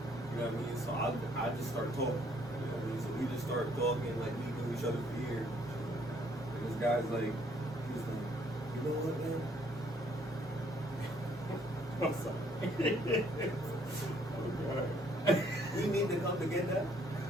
You know what I mean? So I just start talking. You know what I mean? So we just start talking like we knew each other for years. And this guy's like, he was like, you know what, man? I'm sorry. Oh God. We need to come to get that.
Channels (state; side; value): normal; both; correlation 0.65